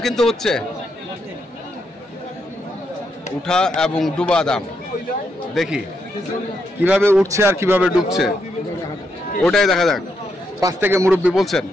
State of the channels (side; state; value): both; normal; correlation 0.80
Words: কিন্তু হচ্ছে, উঠা এবং ডুবা দাম দেখি কিভাবে উঠছে আর কিভাবে ডুবছে, ওটাই দেখা যাক। পাশ থেকে মুরব্বী বলছেন